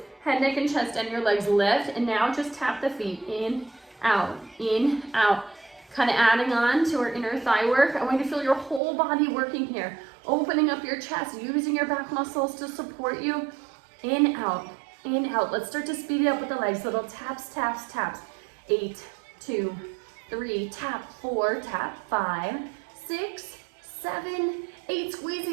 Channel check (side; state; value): left; drops out; at 8.8 s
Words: head, neck, and chest, and your legs lift, and now just tap the feet, in, out, kind of adding on to our inner thigh work. I want you to feel your whole body working here, opening up your chest, using your back muscles to support you, in, out, let's start to speed it up with the legs, little taps, 8, 2, 3, tap, 4, tap, 5, 6, 7, 8, squeeze the